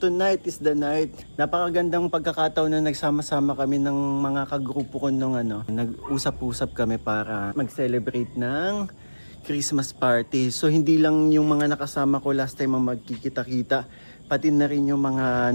is the night. Napakagandang pagkakataon na nagsama-sama kami ng mga kagrupo ko nung nag-usap-usap kami para mag-celebrate ng Christmas party. So hindi lang yung mga nakasama ko last time ang magkikita-kita, pati na rin yung mga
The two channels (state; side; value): inverted; both; correlation -1.00